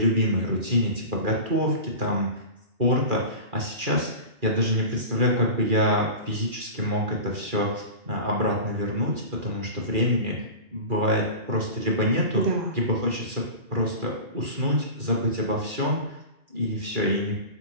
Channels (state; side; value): late; left; 2.4 ms